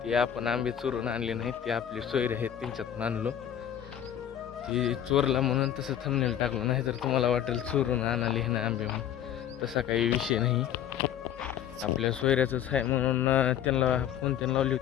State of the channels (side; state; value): right; quieter; 10.1 dB